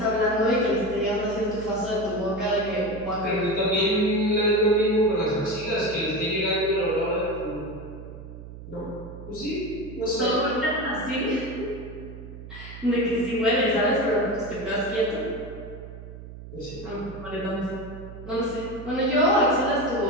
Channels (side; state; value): right; noise; hum, 13 dB below the sound